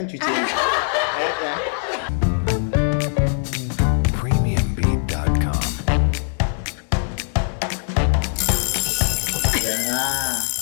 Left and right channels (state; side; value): silent; right; 65 dB below the other